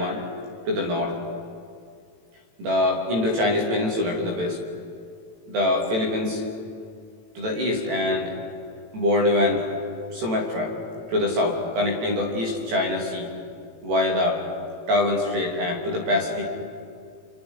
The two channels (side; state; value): left; late; 18 ms